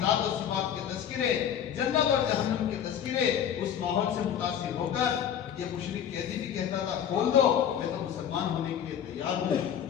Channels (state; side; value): quieter; right; 9.2 dB